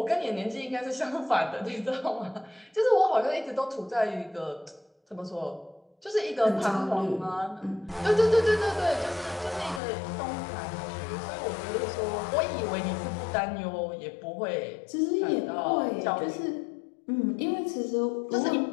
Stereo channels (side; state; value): right; drops out; at 9.8 s